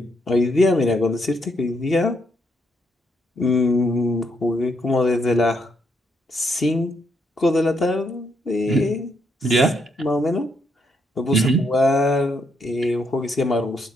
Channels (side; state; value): both; normal; correlation 0.75